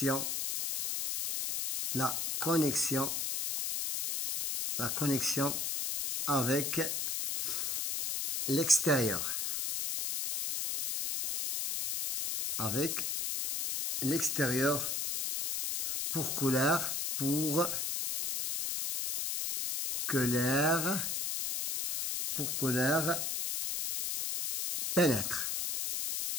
avec l'extérieur. Avec l'extérieur pour que l'air pénètre.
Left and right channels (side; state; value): left; noise; hiss, 1 dB below the sound